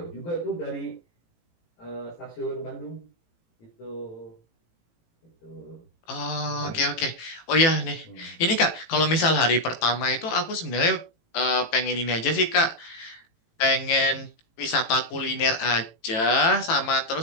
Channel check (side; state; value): right; late; 18 ms